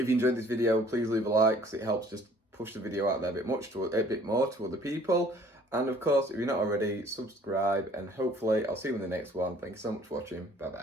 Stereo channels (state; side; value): normal; both; correlation 0.56